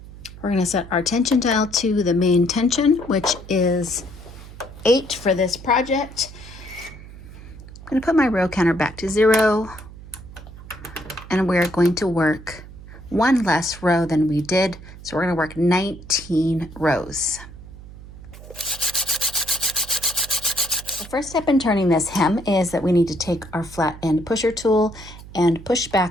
We're going to set our tension dial to the main tension, which is 8 for this project. I'm going to put my row counter back to 0, and we're going to work 1 less row than we did. So we're going to work 19 rows. The first step in turning this hem is that we need to take our flat end pusher tool and push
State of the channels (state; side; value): noise; right; hum, 16 dB below the sound